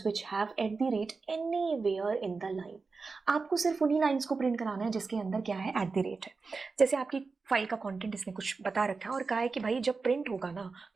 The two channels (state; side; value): quieter; left; 4.4 dB